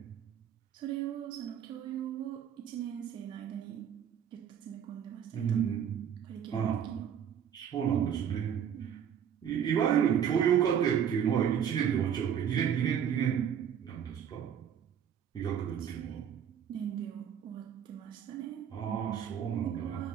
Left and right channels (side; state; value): left; quieter; 8.7 dB